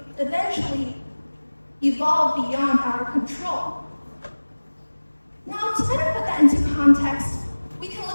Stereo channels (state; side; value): inverted; both; correlation -1.00